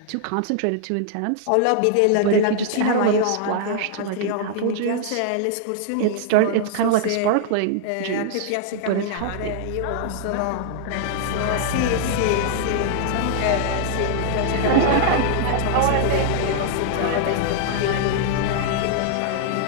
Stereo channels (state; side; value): different; both; correlation -0.01